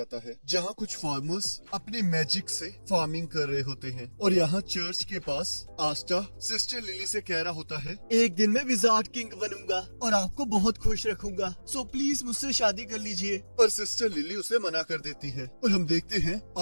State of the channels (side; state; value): both; inverted; correlation -1.00